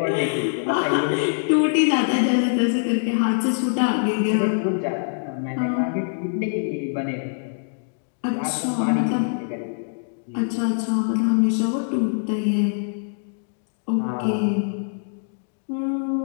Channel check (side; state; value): right; silent; digital silence